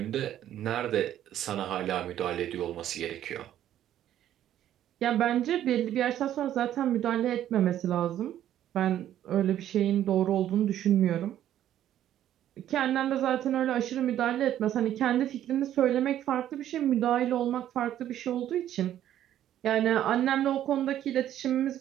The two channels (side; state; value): left; quieter; 11.6 dB